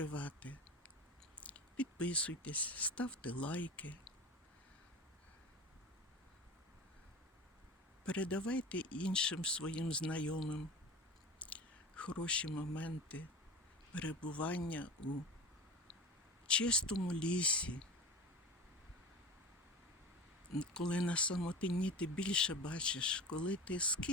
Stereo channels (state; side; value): normal; both; correlation 0.32